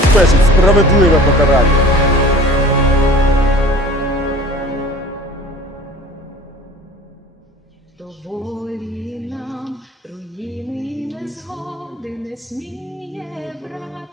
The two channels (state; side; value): normal; both; correlation 0.44